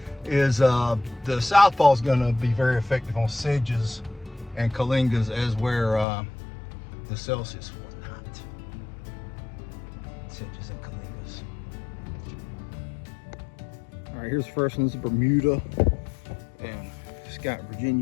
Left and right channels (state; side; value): drops out; right; at 6.1 s